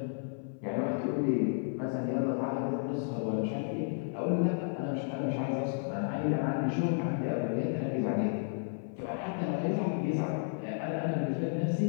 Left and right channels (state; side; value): silent; right; 56 dB below the other